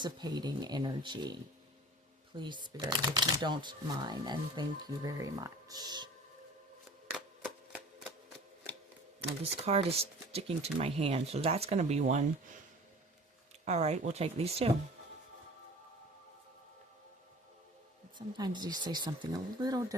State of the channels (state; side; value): normal; both; correlation 0.43